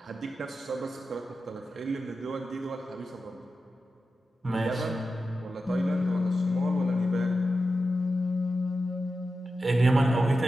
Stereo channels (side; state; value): both; normal; correlation 0.91